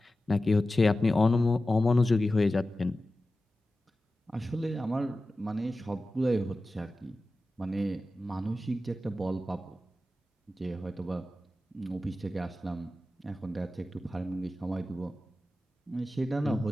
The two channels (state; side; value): normal; both; correlation 0.94